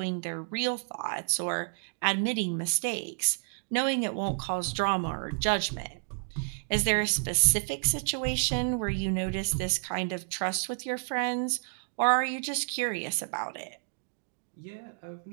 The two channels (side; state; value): left; silent; digital silence